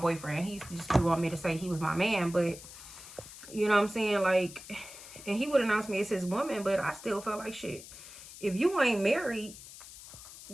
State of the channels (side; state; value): left; noise; hiss, 15 dB below the sound